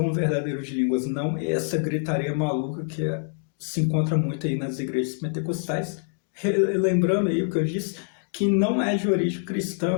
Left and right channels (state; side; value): silent; right; 61 dB below the other